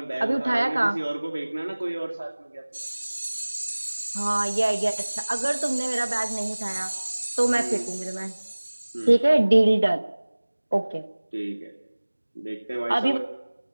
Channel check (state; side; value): inverted; both; correlation -1.00